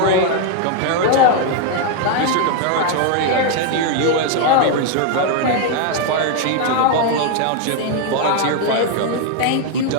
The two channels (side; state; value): both; different; correlation 0.01